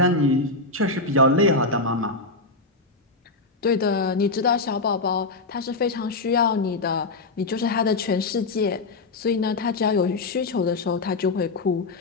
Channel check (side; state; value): right; quieter; 3.4 dB